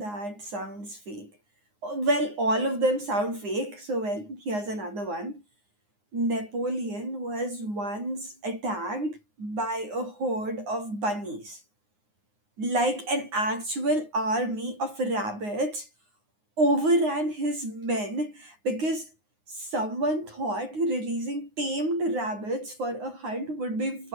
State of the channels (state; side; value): late; left; 9.7 ms